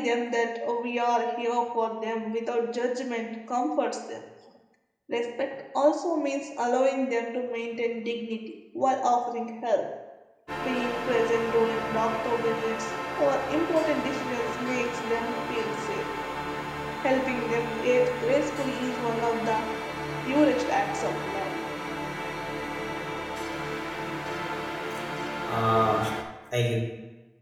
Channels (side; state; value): both; identical; correlation 1.00